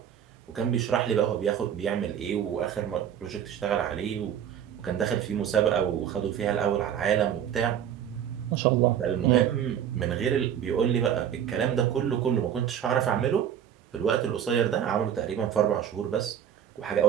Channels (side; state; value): left; quieter; 9.4 dB